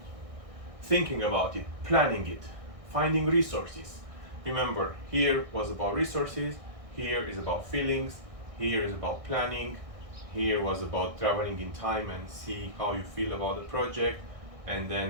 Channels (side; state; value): left; late; 1.6 ms